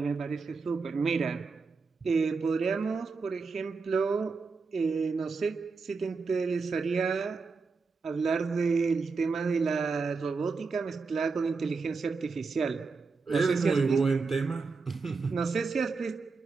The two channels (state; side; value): quieter; left; 4.6 dB